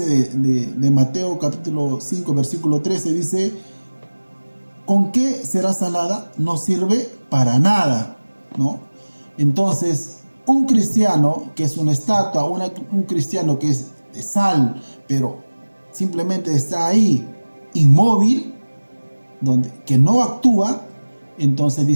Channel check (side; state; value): both; inverted; correlation -1.00